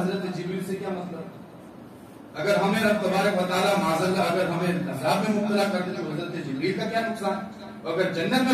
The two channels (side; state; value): both; identical; correlation 1.00